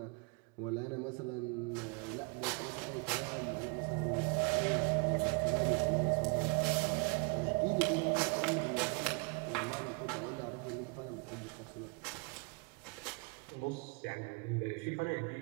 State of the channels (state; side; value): quieter; left; 31.5 dB